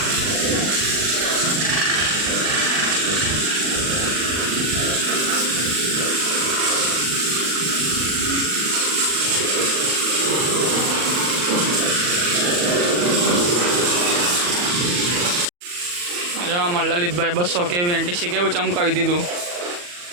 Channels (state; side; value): late; left; 40 ms